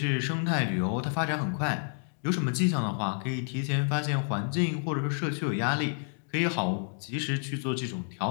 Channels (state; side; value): silent; right; 58 dB below the other